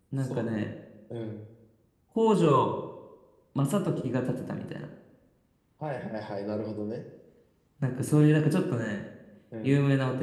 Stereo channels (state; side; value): identical; both; correlation 1.00